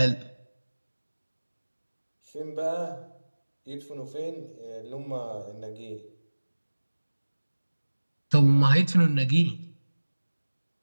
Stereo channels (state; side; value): inverted; both; correlation -1.00